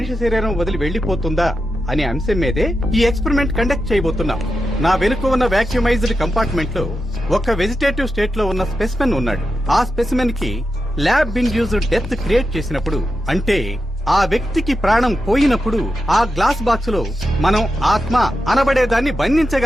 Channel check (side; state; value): both; normal; correlation 0.89